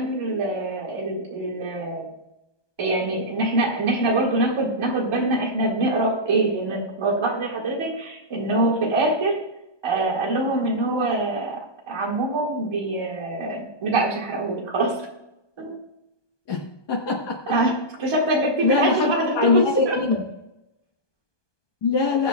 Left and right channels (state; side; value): late; right; 1.2 ms